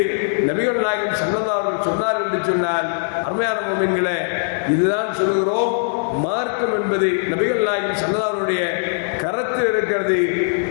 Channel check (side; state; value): right; silent; digital silence